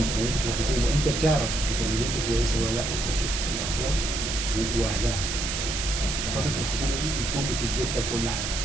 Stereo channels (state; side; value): noise; right; hiss, 2 dB below the sound